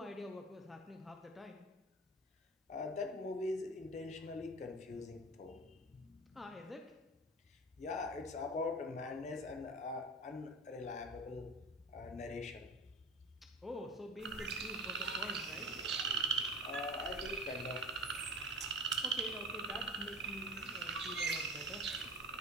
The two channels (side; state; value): both; normal; correlation 0.32